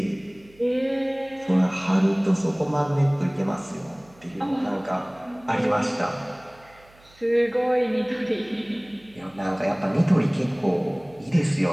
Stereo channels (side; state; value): right; noise; hum, 28 dB below the sound